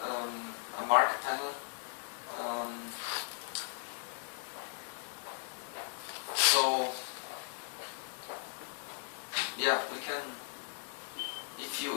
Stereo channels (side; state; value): right; silent; 53 dB below the other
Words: a marker panel. So yeah, we can. If you